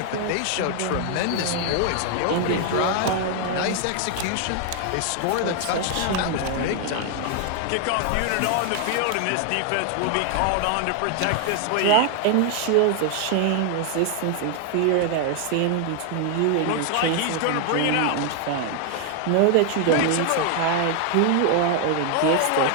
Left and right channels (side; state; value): both; different; correlation 0.00